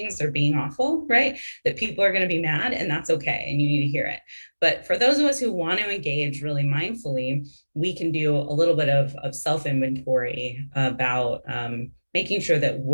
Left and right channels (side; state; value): both; inverted; correlation -1.00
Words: or being awful, right? That people are going to be mad, and that's okay, and you need to hear it. But for those of us who want to engage really mindfully, we can do a little bit of self-inventory about making sure that